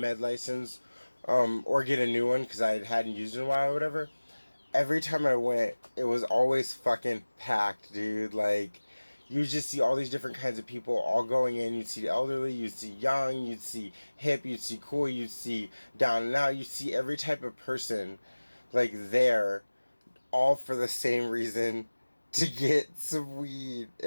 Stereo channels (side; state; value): both; inverted; correlation -1.00